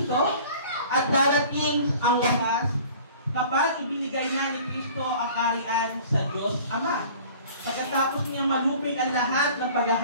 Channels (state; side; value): inverted; both; correlation -0.46